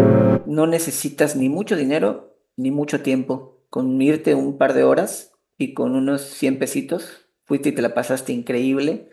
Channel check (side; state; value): both; identical; correlation 1.00